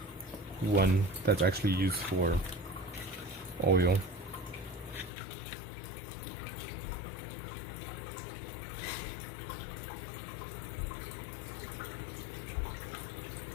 One that's actually used for oil.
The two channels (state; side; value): drops out; right; at 5.1 s